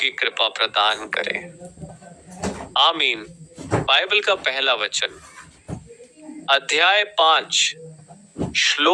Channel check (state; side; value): identical; both; correlation 1.00